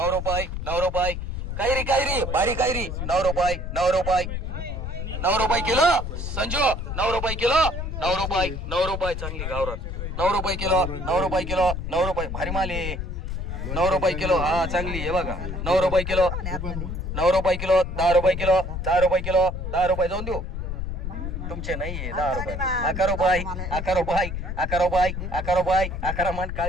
रुपये, 9 रुपये. कैरी कैरी बारी कैरी 9 रुपये, 9 रुपये, 9 रुपये किलो. संजू 9 रुपये किलो, 9 रुपये, 9 रुपये चांगली गावरान. 9 रुपये किलो, 9 रुपये किलो, 9 रुपये भारी माले. 9 रुपये किलो हा चांगली आहे बघा. 9 रुपये किलो, 9 रुपये किलो, 10 रुपये किलो, 10 रुपये किलो, 10 रुपये जाऊन देऊ तुमचे नाहीये. 10 रुपये, 11 रुपये, 11 रुपये, 11 रुपये, 11 रुपये, 11 मन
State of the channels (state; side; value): noise; left; rumble, 4 dB below the sound